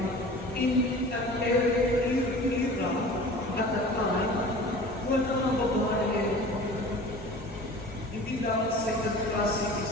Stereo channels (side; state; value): both; normal; correlation 0.41